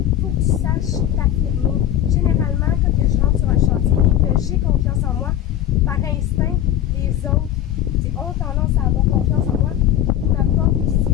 faut que tu saches t'affirmer. Généralement, quand je rentre sur un chantier et que j'ai confiance en moi, par instinct, les autres ont tendance à avoir confiance en moi. Ils m'apportent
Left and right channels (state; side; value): quieter; right; 11.7 dB